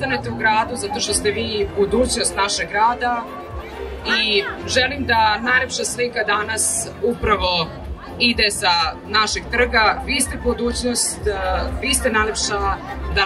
u gradu zato što ste vi budućnost našeg grada i želim da najlepša slika danas upravo ide sa našeg trga. Vi ste budućnost, vi ste najlepša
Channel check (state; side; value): identical; both; correlation 1.00